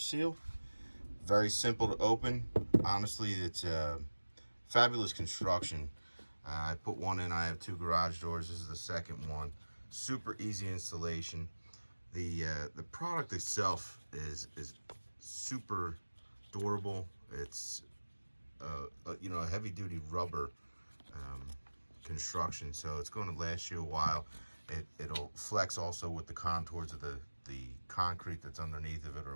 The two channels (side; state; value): both; inverted; correlation -1.00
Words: Very simple to open. Honestly, it's a fabulous construction. I put one in. I have two garage doors. This is the second one. Super easy installation. The product itself is super durable. It's a heavy duty rubber construction, so it's going to last you a while. It'll flex also with the contours of the concrete that's underneath of it,